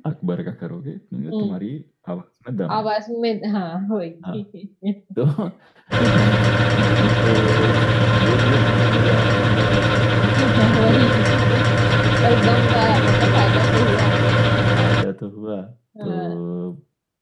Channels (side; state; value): both; identical; correlation 1.00